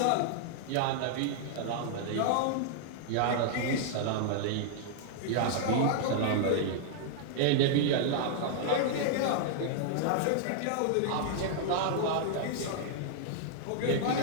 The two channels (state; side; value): different; both; correlation -0.01